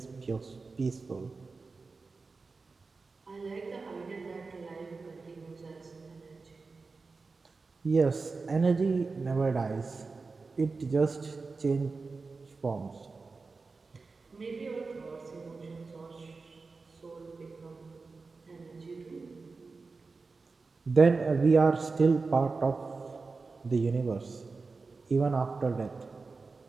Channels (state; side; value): quieter; left; 4.2 dB